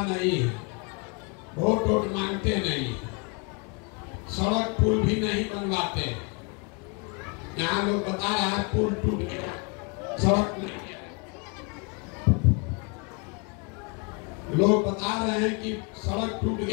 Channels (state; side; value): quieter; right; 33.2 dB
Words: नहीं है, वोट मांगते नहीं, सड़क पुल भी नहीं बनवाते। यहाँ लोग बता रहे हैं पुल टूट गया, सड़क नहीं है। लोग बता रहे हैं कि सड़क टूट